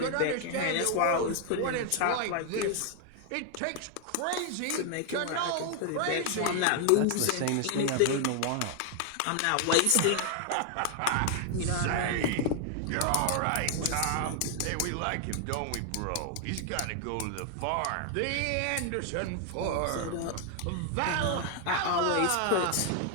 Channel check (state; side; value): different; both; correlation 0.00